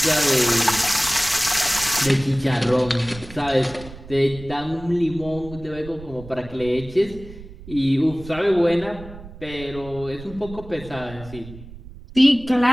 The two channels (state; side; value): noise; right; rumble, 16 dB below the sound